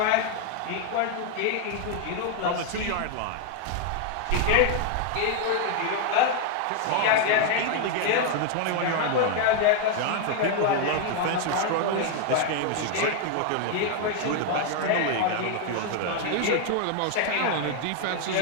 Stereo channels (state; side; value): different; both; correlation 0.00